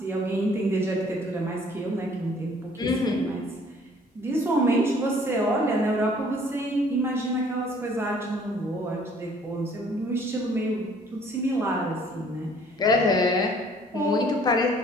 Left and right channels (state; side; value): normal; both; correlation 0.57